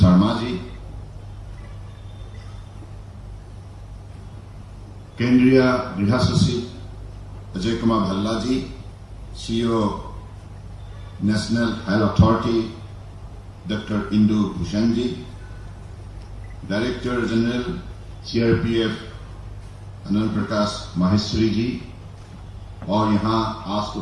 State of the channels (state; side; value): identical; both; correlation 1.00